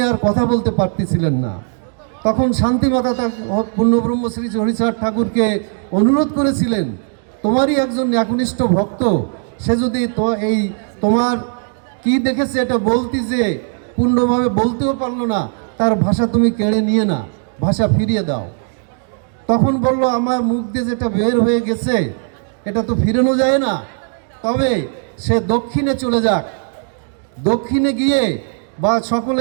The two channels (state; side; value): silent; left; 55 dB below the other